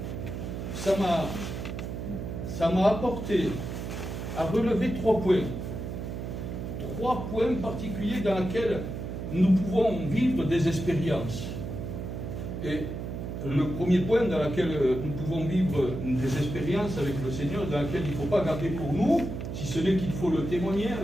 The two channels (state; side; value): noise; right; hum, 6 dB below the sound